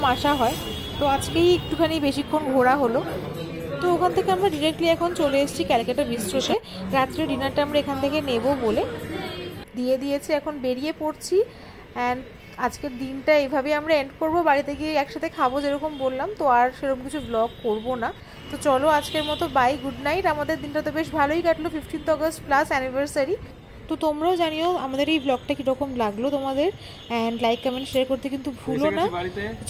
আসা হয়। তো আজকেই একটুখানি বেশিক্ষণ ঘোরা হলো। তো ওখান থেকে আমরা ডিরেক্টলি এখন চলে এসেছি ক্যালকাটা বিস্ট্রোতে। রাত্রে ডিনারটা আমরা এখান থেকে নেব বলে দিয়ে দিয়েছি, এখন বেরিয়ে পড়ছি। অ্যান্ড আজকের দিনটা এইভাবেই আমরা এন্ড করবো, বাড়িতে গিয়ে একসাথে খাবো যেরকম বললাম, তো আর সেরকম কিছু ব্লগ করবো না। তো চলো আজকের মতো বাই, গুড নাইট। আমাদের দিনটা তো বেশ ভালোই কাটলো, 15th অগস্ট প্লাস অ্যানিভার্সারি। তো তোমরাও জানিও আমাদের এই ব্লগটা কীরকম লাগলো তোমাদের, অ্যান্ড লাইক কমেন্ট শেয়ার করতে কিন্তু ভুলো না।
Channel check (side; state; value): both; identical; correlation 1.00